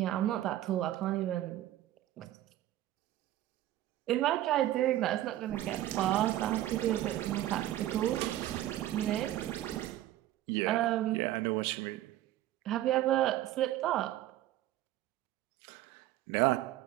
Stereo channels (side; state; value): left; quieter; 14.0 dB